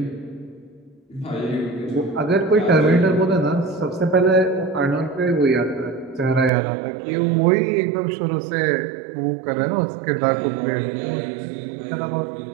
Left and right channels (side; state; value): left; drops out; at 6.5 s